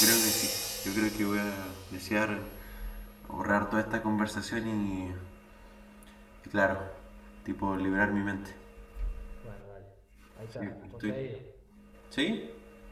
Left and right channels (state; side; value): identical; both; correlation 1.00